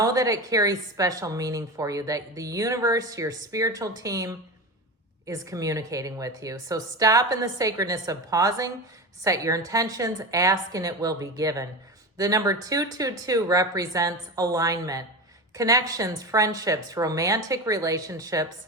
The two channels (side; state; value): both; normal; correlation 0.24